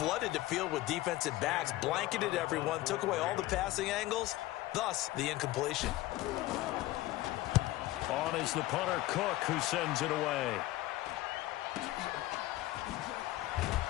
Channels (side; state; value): right; quieter; 16.8 dB